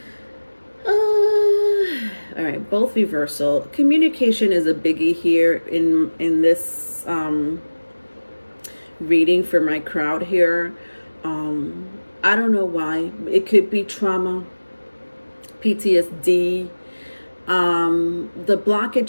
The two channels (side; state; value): both; inverted; correlation -1.00